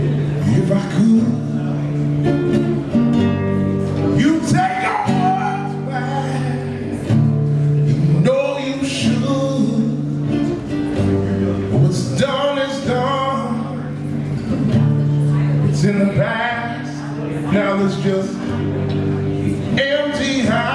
if I could. You take your words back, you know you should. What's done is done. It's in the past. Now there's just empty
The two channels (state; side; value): identical; both; correlation 1.00